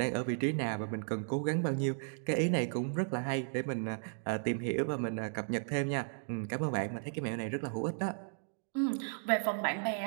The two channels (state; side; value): silent; left; digital silence